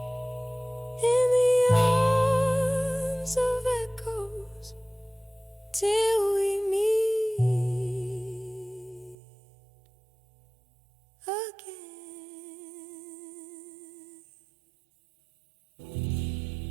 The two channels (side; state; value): left; drops out; at 9.2 s